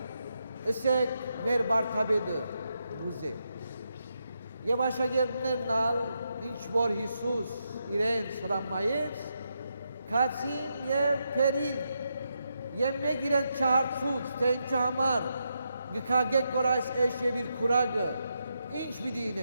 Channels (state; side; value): inverted; both; correlation -0.83